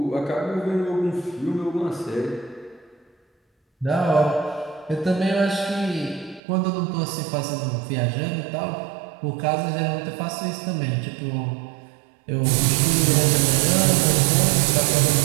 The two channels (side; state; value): left; drops out; at 6.4 s